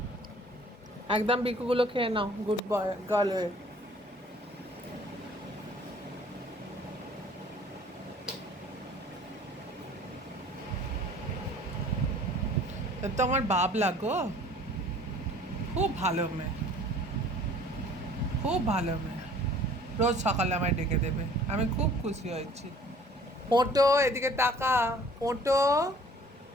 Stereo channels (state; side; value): normal; both; correlation 0.52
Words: একদম বিকুগুলো খেয়ে নাও, গুড বয় গার্ল হয়ে। তো আমার বাবলা গো, খুব ভালো মেয়ে, খুব ভালো মেয়ে। রোজ সকালে আমায় ডেকে দেবে, আমি খুব খুশি হয়েছি। মোটো, এদিকে তাকা। মোটো,